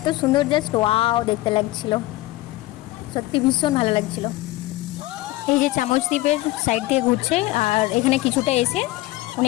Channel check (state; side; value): quieter; right; 18.1 dB